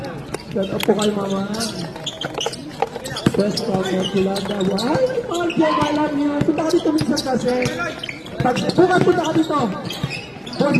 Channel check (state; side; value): identical; both; correlation 1.00